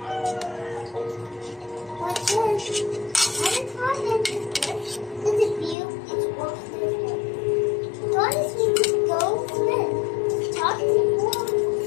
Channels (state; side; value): drops out; right; at 5.8 s